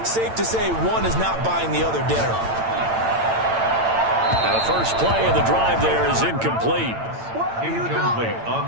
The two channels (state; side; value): late; left; 8.9 ms